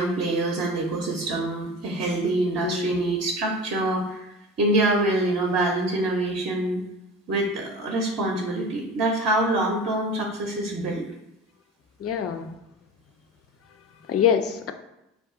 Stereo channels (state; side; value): normal; both; correlation 0.32